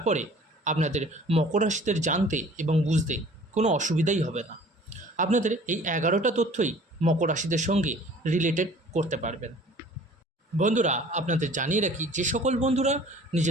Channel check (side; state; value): both; normal; correlation 0.49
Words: আপনাদের মকর রাশিদের জানতে এবং বুঝতে কোনো অসুবিধাই হবে না। আপনাদের এই 11টা তথ্যই মকর রাশিদের সঙ্গে রিলেটেড করতে পারবেন। বন্ধুরা, আপনাদের জানিয়ে রাখি, যে সকল বন্ধুরা